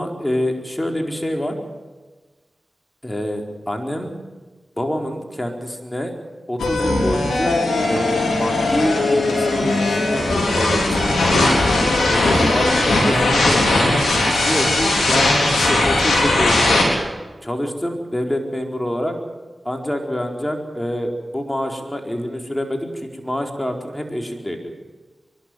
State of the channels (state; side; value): normal; both; correlation 0.90